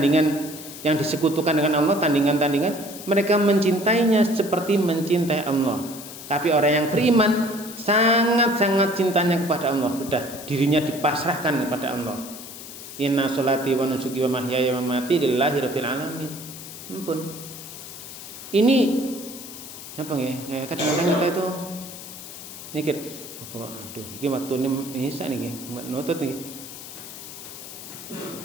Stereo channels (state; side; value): noise; left; hiss, 13 dB below the sound